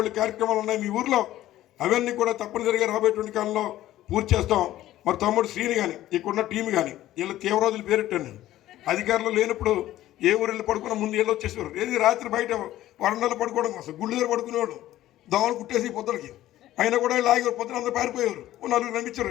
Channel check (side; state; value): right; quieter; 14.3 dB